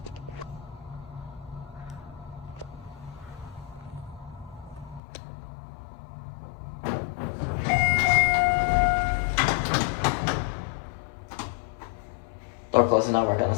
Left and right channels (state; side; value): drops out; right; at 5.0 s